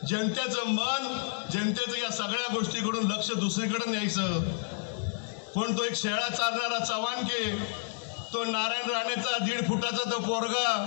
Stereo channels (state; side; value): silent; right; digital silence